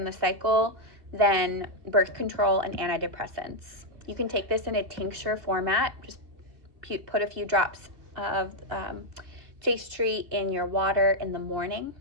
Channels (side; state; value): left; late; 2.6 ms